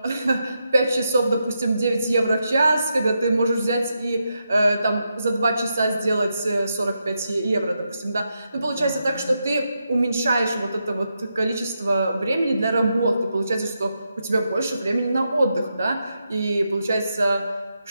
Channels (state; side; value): inverted; both; correlation -0.84